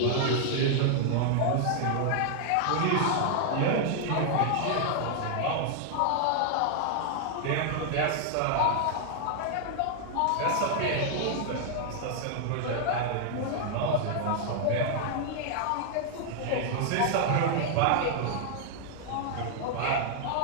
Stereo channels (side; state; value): both; different; correlation 0.00